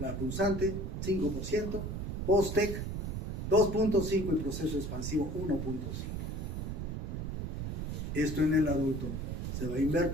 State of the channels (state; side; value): noise; right; rumble, 3 dB below the sound